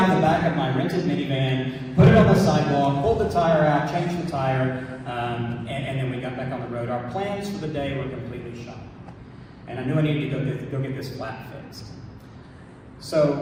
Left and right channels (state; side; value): identical; both; correlation 1.00